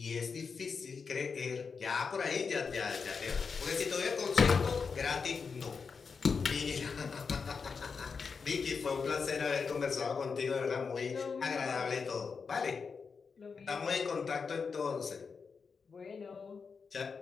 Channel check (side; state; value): right; quieter; 5.4 dB